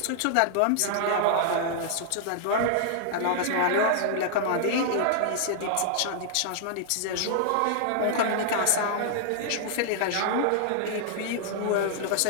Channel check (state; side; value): different; both; correlation -0.01